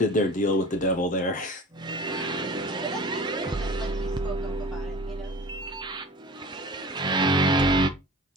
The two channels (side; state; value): both; normal; correlation 0.39